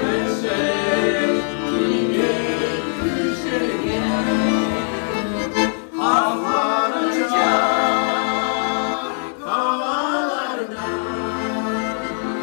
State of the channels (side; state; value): right; silent; digital silence